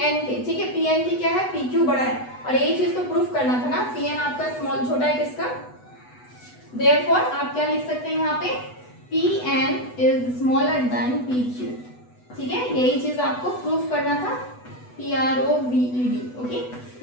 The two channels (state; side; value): late; right; 8.1 ms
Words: के। ठीक है, पी एन की क्या है, पी क्यू बड़ा है। और यही चीज तो प्रूफ करना था ना, पी एन आपका स्मॉल छोटा है किसका, देयरफॉर आप क्या लिख सकते हैं यहाँ पे, P N is smaller than P Q. ठीक है, यही चीज आपको प्रूफ करना था, PROVED। ओके,